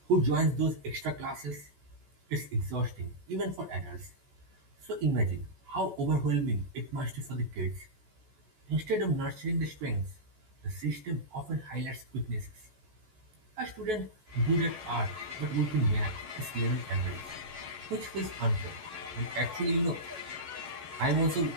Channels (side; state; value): left; late; 14 ms